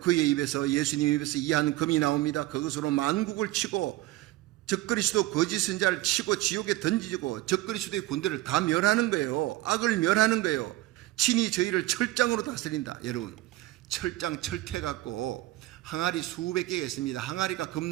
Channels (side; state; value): left; quieter; 17.0 dB